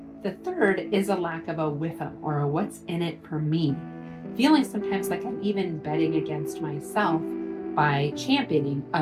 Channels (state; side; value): identical; both; correlation 1.00